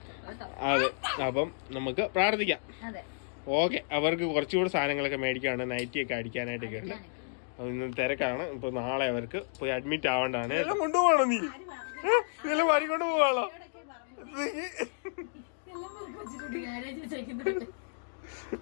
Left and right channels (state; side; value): silent; right; digital silence